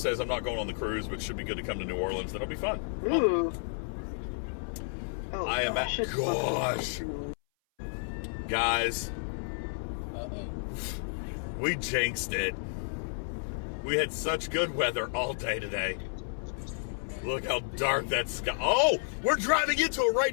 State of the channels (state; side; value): silent; right; 57 dB below the other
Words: I'm not going on the cruise, but should be good to come to New Orleans. That'll be fun. Ooh. Oh, I am at... Gosh. Guys. Uh-oh. We jinxed it. We had such good weather all day today. Look how dark that sky... Oh! We're driving into it